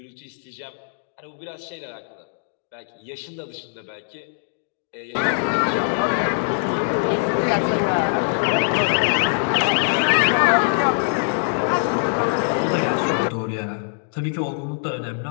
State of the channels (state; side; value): silent; right; digital silence